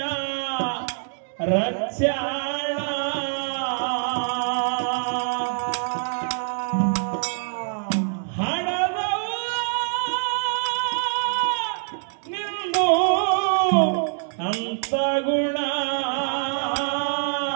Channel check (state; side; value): silent; left; digital silence